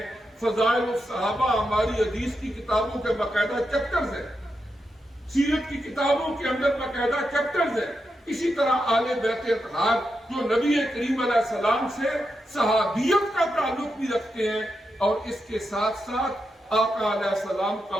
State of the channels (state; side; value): normal; both; correlation 0.86